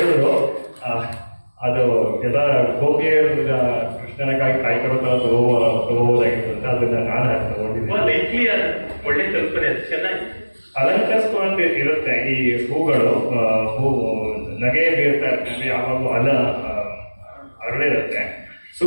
ಅದು ಎಲ್ಲ ಗೋಪಿಯರ್ ಕೃಷ್ಣನಕ್ಕಾಗಿ ಕಾಯ್ಕೊಳ್ತಾ ತಗೋಬೋದಾಗಿತ್ತು ಅಂತ ಅದನ್ನ ನಾನು ತಗೊಂಡಿದ್ದೆ. ಒಳ್ಳೆ ಕಲ್ಪನೆ, ಚೆನ್ನಾಗಿ ಅಲಂಕರಿಸ್ಕೊಂಡು ಇರುತ್ತೆ ಈ ಹೂಗಳು. ನಗೆ ಬೀರ್ತಾ ಇರ್ತದೆ, ಯಾವಾಗೂ ಅರಳಿರುತ್ತೆ,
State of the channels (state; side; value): inverted; both; correlation -1.00